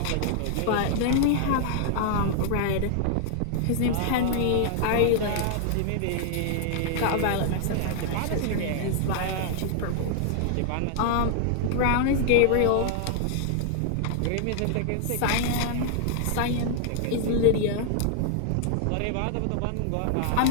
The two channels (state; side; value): different; both; correlation 0.00